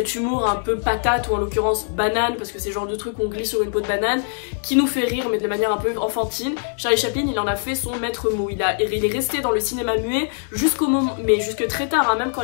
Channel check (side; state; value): right; silent; digital silence